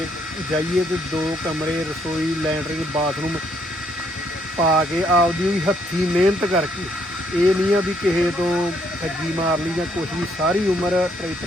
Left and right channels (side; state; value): both; normal; correlation 0.70